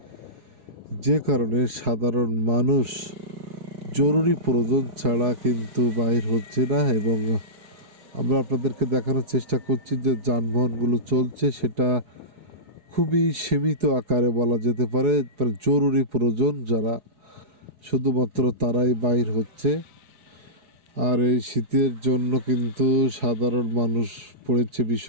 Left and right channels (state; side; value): late; left; 4.8 ms